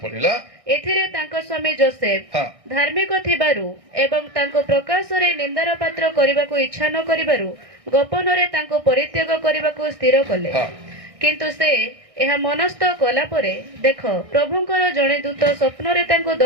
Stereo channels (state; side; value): late; left; 1.6 ms